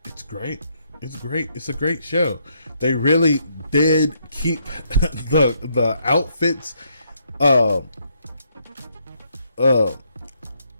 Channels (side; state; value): both; inverted; correlation -0.74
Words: it's great. It's great. It's a great show. They really did keep the outfits